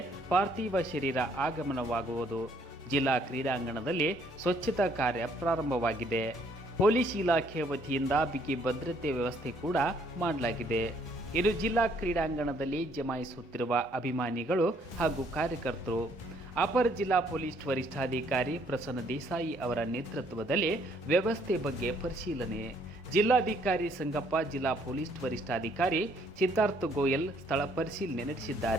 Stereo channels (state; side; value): normal; both; correlation 0.66